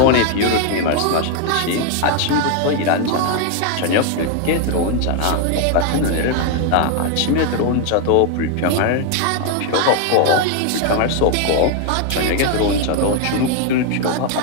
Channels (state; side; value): different; both; correlation 0.01